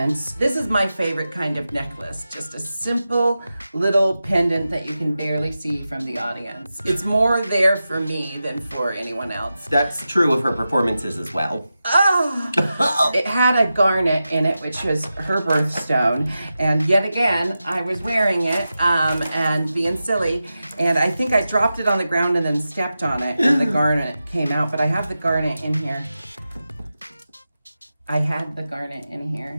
This is my favorite kind of necklace. Just a simple little pendant that you can barely see from the audience. It's more there for me than for anyone else. That's true of her performances as well. Oh! It had a garnet in it, which was her birthstone. And yet again, I was wearing it and being silly. And I think I dropped it on the ground and then stepped on it and the garnet came out. But I have the garnet in here. I had the garnet in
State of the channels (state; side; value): inverted; both; correlation -0.92